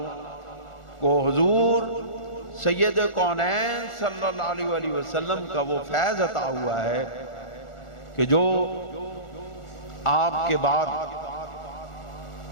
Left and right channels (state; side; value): late; right; 1.4 ms